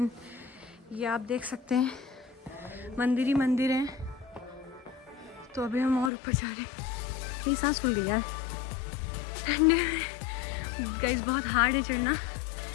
ये आप देख सकते हैं मंदिर ही मंदिर है। तो अभी हम और ऊपर जा रहे हैं। मेरी सांस फूल गई यार। एंड गाइस बहुत हार्ड है चढ़ना।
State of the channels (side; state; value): right; drops out; at 6.1 s